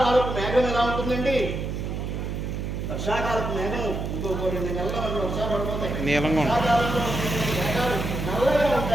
మేఘం ఎలా ఉంటుందండి? వర్షాకాలపు మేఘం ఇంకో కొన్ని నెలల మనకు వర్షాలు పడిపోతాయి. వర్షాకాలంలో మేఘాలు నల్లగా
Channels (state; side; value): noise; right; hum, 4 dB below the sound